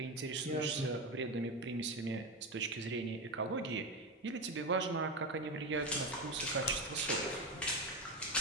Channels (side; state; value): both; normal; correlation 0.15